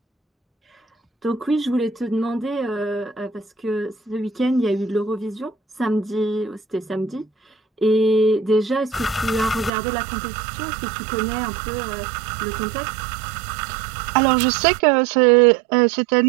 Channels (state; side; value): drops out; left; at 9.7 s